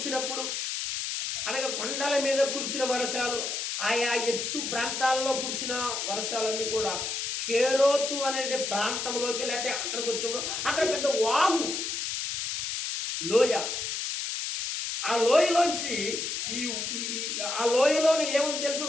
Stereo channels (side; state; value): left; noise; hiss, 3 dB below the sound